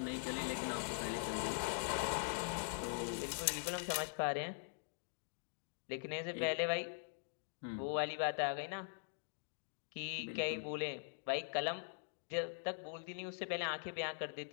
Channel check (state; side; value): silent; right; digital silence